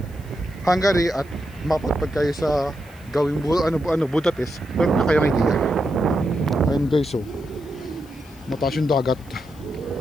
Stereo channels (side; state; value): left; noise; hiss, 27 dB below the sound